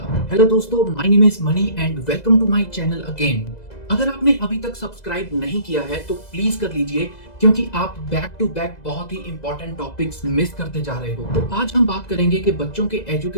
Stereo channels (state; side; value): late; right; 2.0 ms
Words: हेलो दोस्तों, my name is Mani and welcome to my channel again. अगर आपने अभी तक सब्सक्राइब नहीं किया है तो प्लीज कर लीजिए, क्योंकि आप बैक टू बैक बहुत ही इंपॉर्टेंट टॉपिक्स मिस करते जा रहे हो। तो आज हम बात करेंगे कि बच्चों के